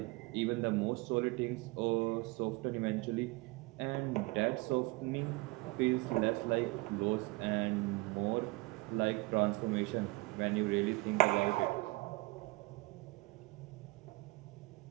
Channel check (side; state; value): left; quieter; 22.8 dB